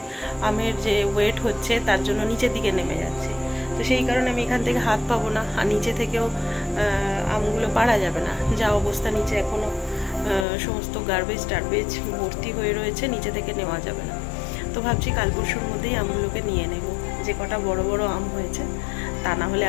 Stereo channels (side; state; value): right; drops out; at 10.5 s